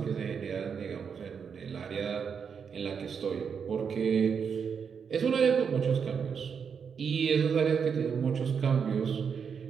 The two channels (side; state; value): left; quieter; 6.6 dB